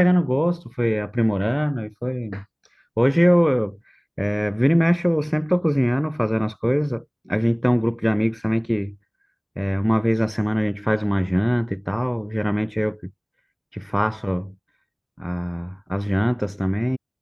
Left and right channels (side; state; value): both; identical; correlation 1.00